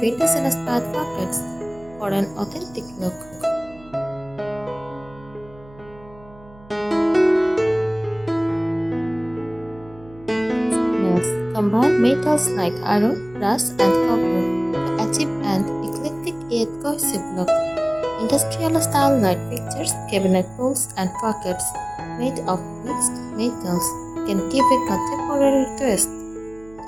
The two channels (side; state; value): right; noise; hum, 22 dB below the sound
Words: pockets for an authentic look. Nails. Combine metals like iron, brass, and copper to achieve an eclectic yet cohesive look. Industrial-style light fixtures, cabinet pulls, and pockets made of mixed metals can give a contemporary twist